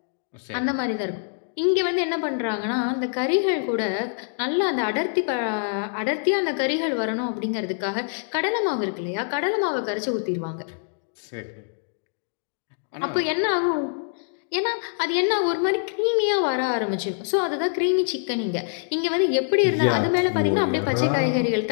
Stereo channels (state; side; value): silent; right; digital silence